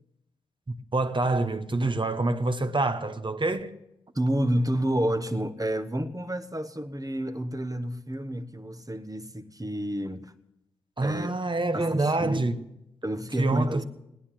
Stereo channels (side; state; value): both; normal; correlation 0.82